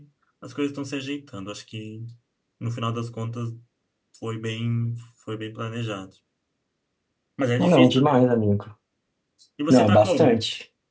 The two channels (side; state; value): both; identical; correlation 1.00